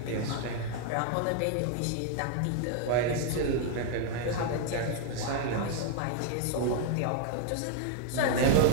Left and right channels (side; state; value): both; different; correlation 0.00